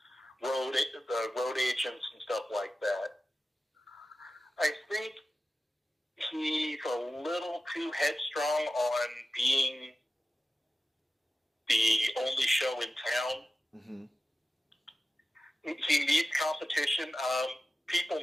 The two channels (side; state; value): both; normal; correlation 0.94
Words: road agents and stuff like that. I think he's a little too headstrong on being the only show in town. Mm-hmm. He needs competition. People